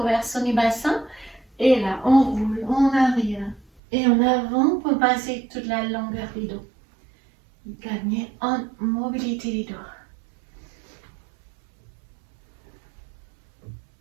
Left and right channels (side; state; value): left; drops out; at 3.8 s